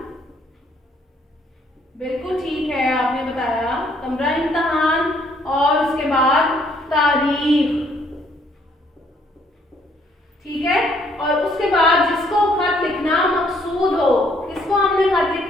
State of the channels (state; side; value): normal; both; correlation 0.66